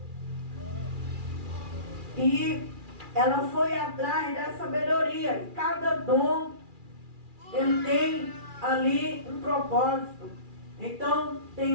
E ela foi atrás da sabedoria. E cada dom, ele tem ali um propósito. Então,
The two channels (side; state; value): left; late; 2.4 ms